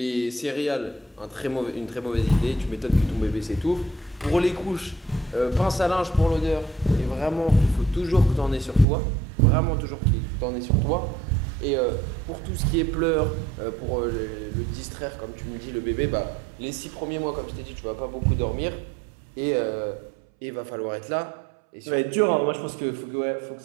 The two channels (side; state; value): left; drops out; at 8.8 s